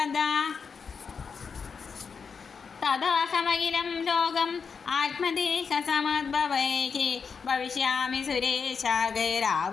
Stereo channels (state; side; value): quieter; right; 5.7 dB